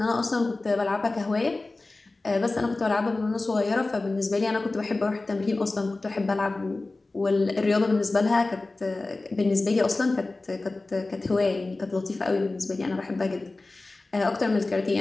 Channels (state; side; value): quieter; right; 3.2 dB